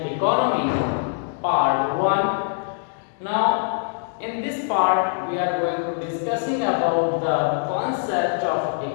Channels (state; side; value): silent; right; digital silence